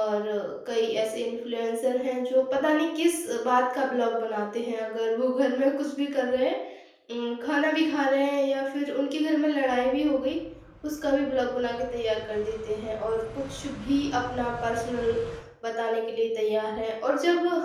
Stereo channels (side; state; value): both; identical; correlation 1.00